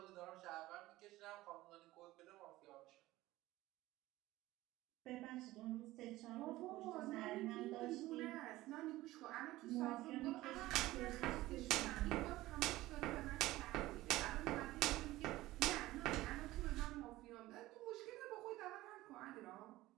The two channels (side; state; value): left; quieter; 17.4 dB